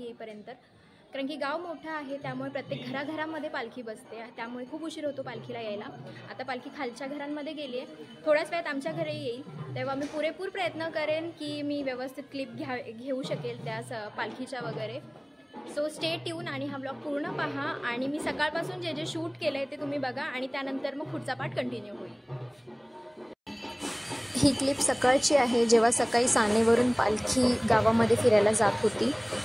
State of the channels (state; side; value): identical; both; correlation 1.00